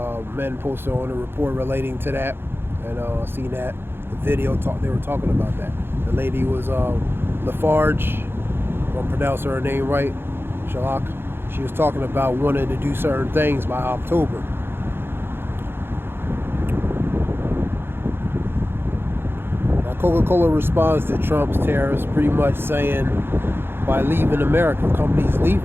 Men posted on a report relating to that, and I seen that the video they were talking about that. The lady was Lafarge, if I'm pronouncing her name right, Shalak. She was talking about wanting to do certain things by October. Now Coca-Cola responds to Trump's tariffs, pretty much saying by leaving America, companies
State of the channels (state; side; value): late; left; 0.11 ms